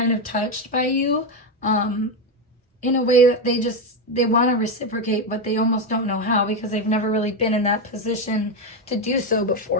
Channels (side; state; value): both; normal; correlation 0.09